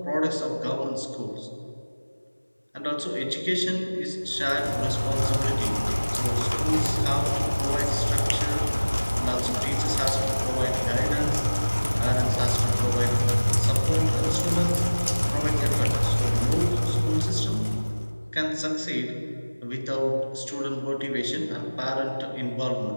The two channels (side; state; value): both; inverted; correlation -1.00